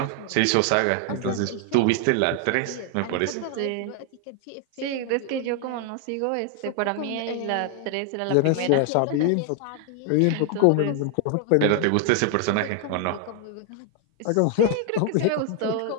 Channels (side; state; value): both; different; correlation 0.00